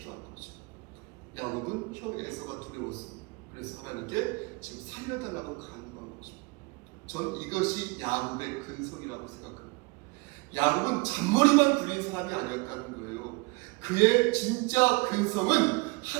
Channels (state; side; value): quieter; left; 27.0 dB